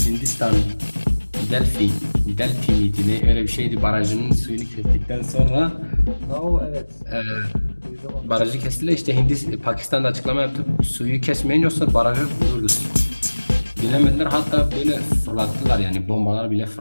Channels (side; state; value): both; inverted; correlation -1.00